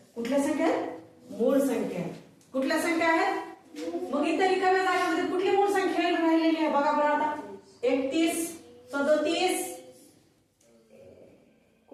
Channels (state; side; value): identical; both; correlation 1.00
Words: कुठल्या संख्या आहेत? मूळ संख्या. कुठल्या संख्या आहेत? मग इतर रिकाम्या जागांमध्ये कुठली मूळ संख्या राहिलेली आहे बघा बरं. आता 31, 37